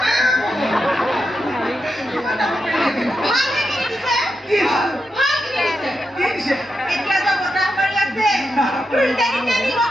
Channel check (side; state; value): both; normal; correlation 0.86